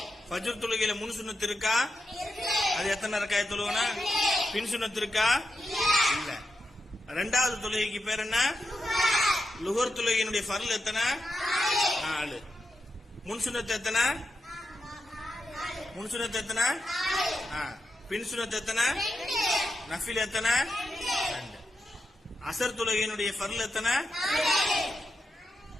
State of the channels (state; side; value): normal; both; correlation 0.88